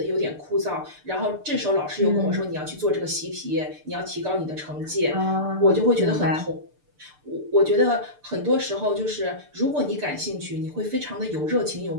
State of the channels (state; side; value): late; left; 6.8 ms